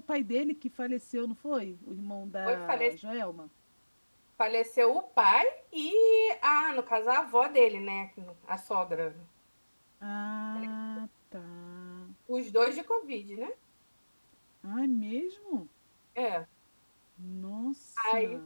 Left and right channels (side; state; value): both; inverted; correlation -1.00